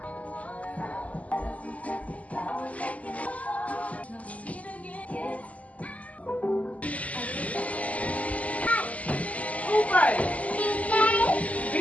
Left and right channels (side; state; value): right; late; 0.070 ms